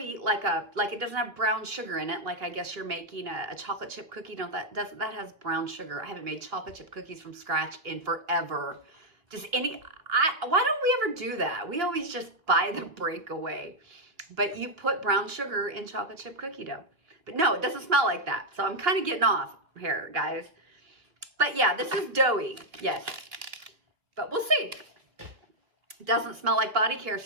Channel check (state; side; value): late; left; 2.9 ms